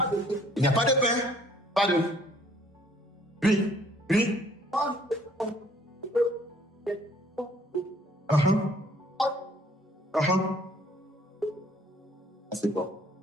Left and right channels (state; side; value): normal; both; correlation 0.60